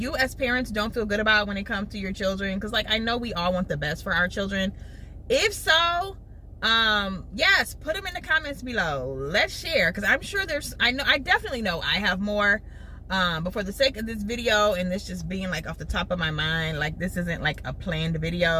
as parents don't feel good about when it comes to your children? Because like I know we all want the best for our children. If so, yes, put them in the comments below. Let's share, because I'm sure I definitely know I have more. But for the sake of this video and this just being like off the top of my mind, like this isn't like a planned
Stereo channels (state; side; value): identical; both; correlation 1.00